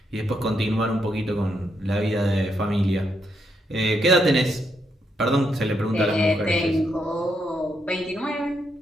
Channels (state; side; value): normal; both; correlation 0.78